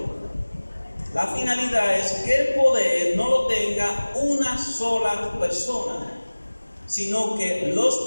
La finalidad es que el poder no lo tenga una sola persona, sino que los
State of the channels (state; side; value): inverted; both; correlation -1.00